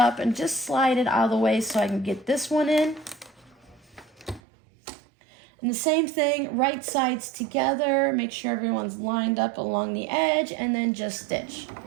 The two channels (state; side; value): drops out; left; at 4.4 s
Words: and just slide it out of the way so I can get this one in. And the same thing, right sides together, make sure everyone's lined up along the edge, and then just stitch.